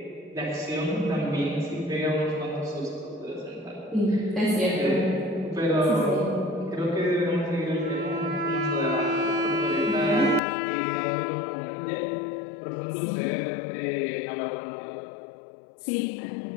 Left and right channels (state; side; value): drops out; right; at 10.4 s